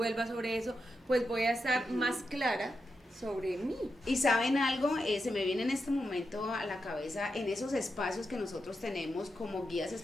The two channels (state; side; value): normal; both; correlation 0.86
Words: sobre eso, pues voy a estar más clara sobre mí. Y ¿saben algo? Se me viene en este momento a la cabeza, en esos espacios que nosotros tenemos como guías